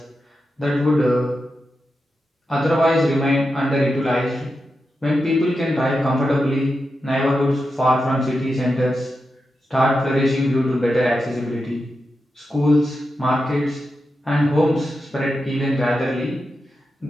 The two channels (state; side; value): normal; both; correlation 0.89